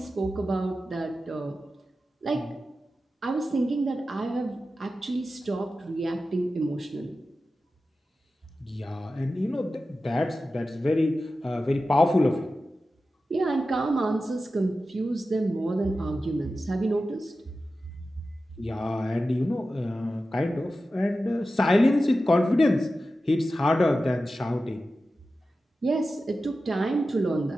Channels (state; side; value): normal; both; correlation 0.93